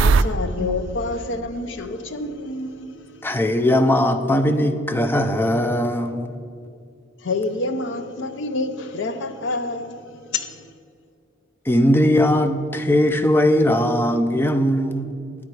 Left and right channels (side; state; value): both; normal; correlation 0.71